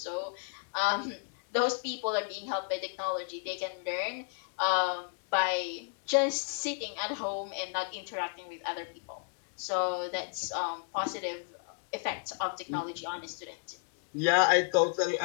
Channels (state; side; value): silent; right; 56 dB below the other